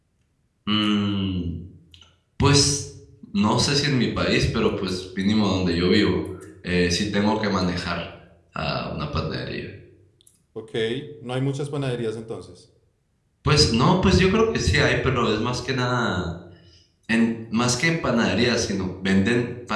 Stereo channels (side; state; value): both; identical; correlation 1.00